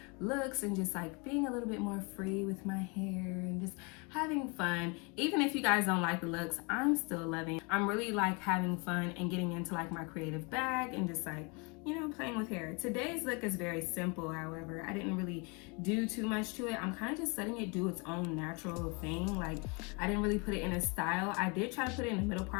looks and just like being a little bit more free with my hair and just having fun. Even if you guys don't like the looks, I'm still loving. I'm really like having fun and getting into like my creative bag and just like, you know, playing with hair. Today's look is very simple, however. I didn't really do too much to it. I'm kind of just letting it do its own natural thing. Like, I didn't really put it in a style. I did try to put it in the middle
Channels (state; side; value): quieter; right; 31.1 dB